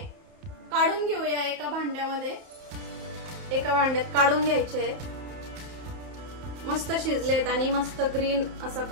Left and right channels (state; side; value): late; left; 31 ms